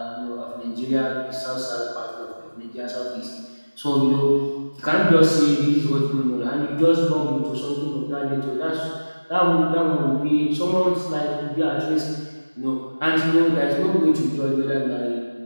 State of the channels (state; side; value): inverted; both; correlation -1.00